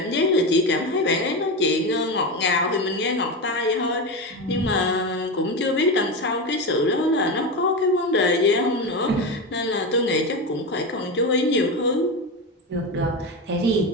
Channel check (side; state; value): both; normal; correlation 0.18